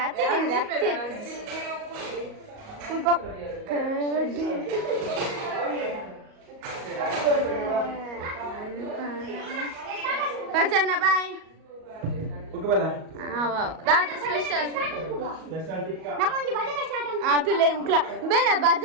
ಅತ್ತೆ ಪಚನ್ನ ಬಾಯ್ దాదా స్పెషల్ ತುಲೆ ಮುಕ್ಲ ಬೇಡ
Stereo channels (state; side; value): late; left; 38 ms